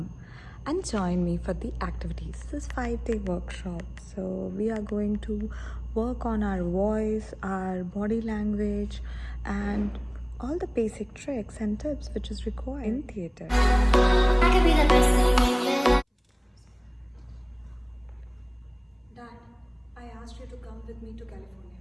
and join me for the activities. This is 5-day workshop, so we are going to work on our voice, our body language, and all the basic tricks and tips which is required in theatre. I could be the best thing in your life. Dad, I asked you to come with me to California.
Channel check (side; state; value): both; identical; correlation 1.00